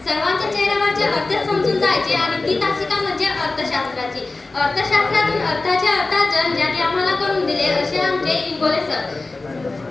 सर्वांच्या चेहऱ्यावरचे अर्थ समजून जायचे आणि ती तासिका म्हणजे अर्थशास्त्राची. अर्थशास्त्रातून अर्थाचे अर्थार्जन ज्यांनी आम्हाला करून दिले असे आमचे इंगोले सर.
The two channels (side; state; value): right; quieter; 3.4 dB